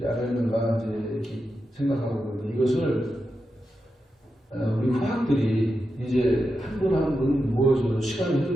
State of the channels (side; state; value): both; normal; correlation 0.88